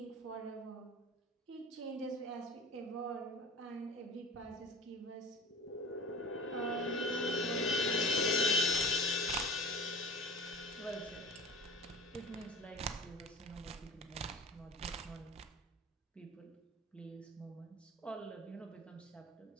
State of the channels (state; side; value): normal; both; correlation 0.39